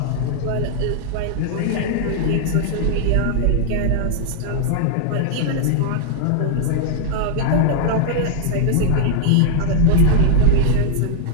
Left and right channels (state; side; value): different; both; correlation -0.01